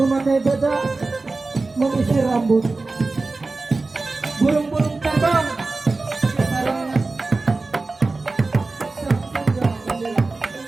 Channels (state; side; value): quieter; left; 3.6 dB